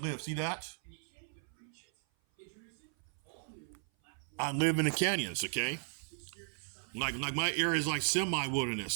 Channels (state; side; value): silent; left; 54 dB below the other